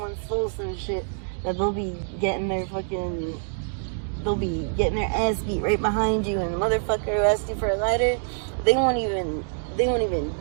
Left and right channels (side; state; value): left; silent; digital silence